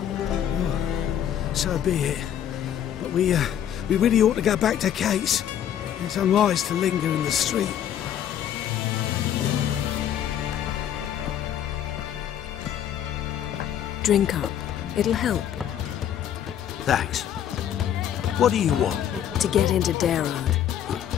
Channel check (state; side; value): quieter; right; 10.1 dB